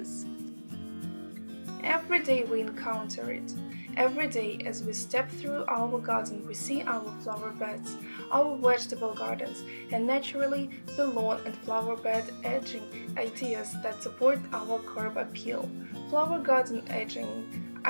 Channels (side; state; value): both; inverted; correlation -1.00